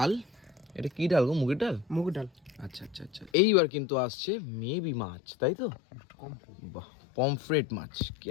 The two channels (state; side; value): drops out; right; at 3.3 s